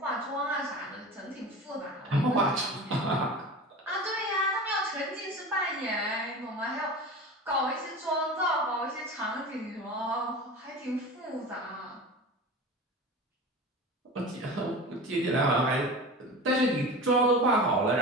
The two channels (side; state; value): both; normal; correlation 0.32